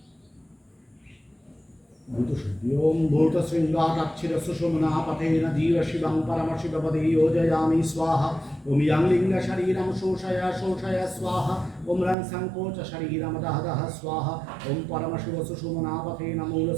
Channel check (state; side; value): drops out; left; at 12.2 s